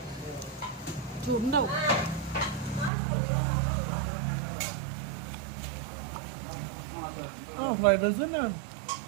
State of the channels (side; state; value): left; drops out; at 2.9 s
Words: ഫ്രൈഡ് റൈസ് തന്നെ